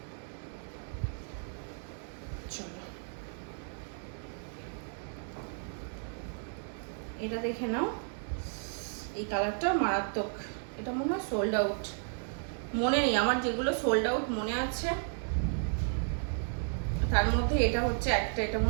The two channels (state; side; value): silent; left; 56 dB below the other